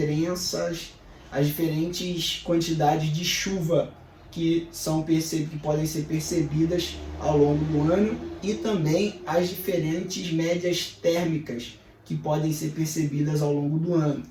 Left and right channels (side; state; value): both; identical; correlation 1.00